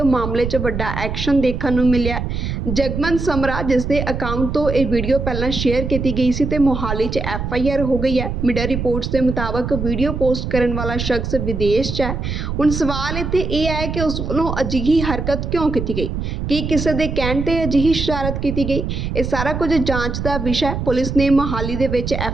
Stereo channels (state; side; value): noise; right; rumble, 4 dB below the sound